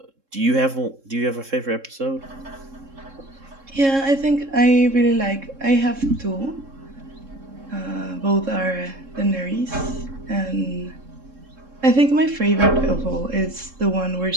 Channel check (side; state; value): left; late; 3.7 ms